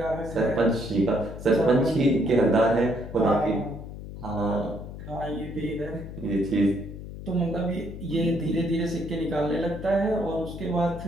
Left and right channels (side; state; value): left; noise; hum, 11 dB below the sound